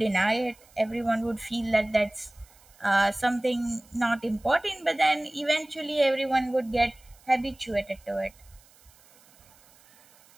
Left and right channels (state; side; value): noise; right; hiss, 28 dB below the sound